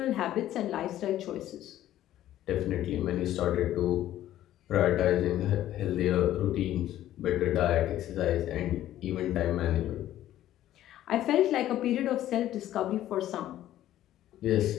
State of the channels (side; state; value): right; quieter; 13.0 dB